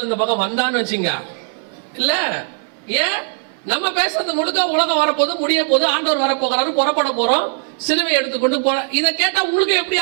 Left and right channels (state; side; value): silent; left; 61 dB below the other